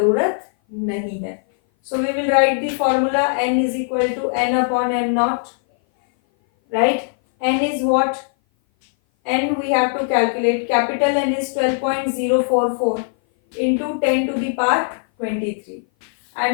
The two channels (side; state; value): right; silent; 57 dB below the other